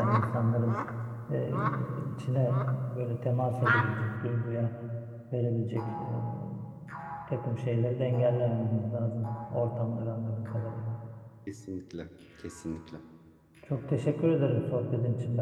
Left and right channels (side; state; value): both; identical; correlation 1.00